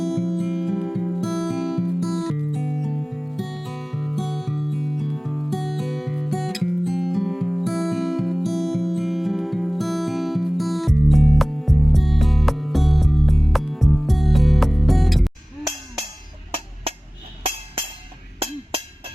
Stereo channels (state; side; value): normal; both; correlation 0.98